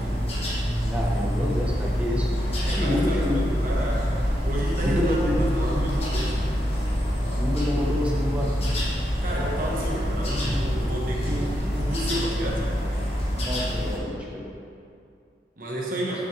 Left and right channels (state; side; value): normal; both; correlation 0.84